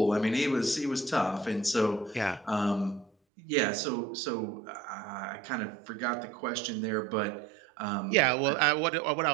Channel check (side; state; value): left; drops out; at 3.1 s